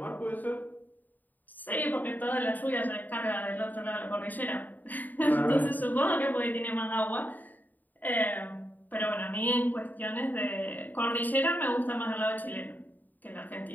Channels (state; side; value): late; right; 0.086 ms